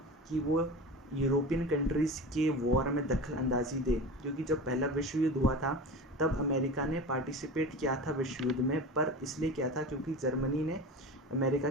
कि वो यूरोपियन कंट्रीज़ के वॉर में दखल अंदाजी दे, क्योंकि जब पहला विश्व युद्ध हुआ था तब अमेरिका ने पार्टिसिपेट किया था विश्व युद्ध में, पर इसलिए किया था क्योंकि जर्मनी ने अमेरिका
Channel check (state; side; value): normal; both; correlation 0.30